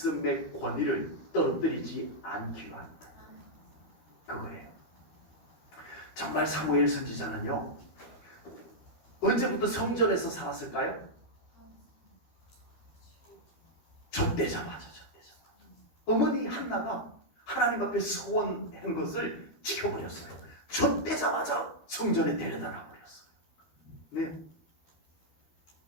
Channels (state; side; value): late; right; 13 ms